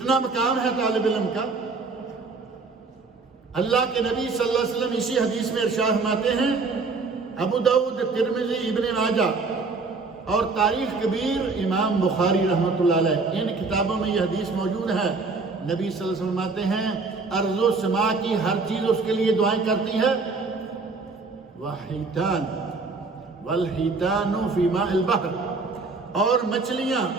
مقام ہے طالب علم کا! اللہ کے نبی صلی اللہ علیہ وسلم اسی حدیث میں ارشاد فرماتے ہیں، ابو داؤد، ترمذی، ابن ماجہ اور تاریخ کبیر امام بخاری رحمۃ اللہ علیہ، ان کتابوں میں یہ حدیث موجود ہے۔ نبی صلی اللہ علیہ وسلم فرماتے ہیں ارض و سما کی ہر چیز اس کے لیے دعائیں کرتی ہے، وحیتان والحیتان فی ماء البحر، اور مچھلیاں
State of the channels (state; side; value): quieter; left; 4.1 dB